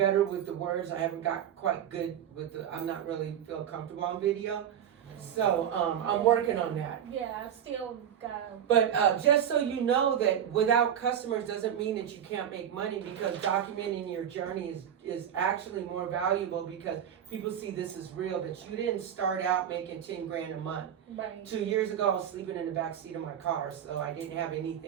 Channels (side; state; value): left; quieter; 9.4 dB